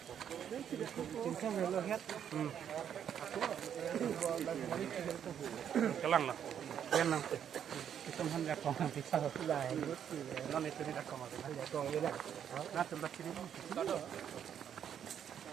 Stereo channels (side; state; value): left; quieter; 8.9 dB